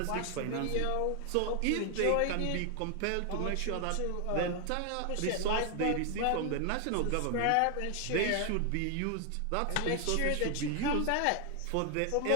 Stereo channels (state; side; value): different; both; correlation 0.00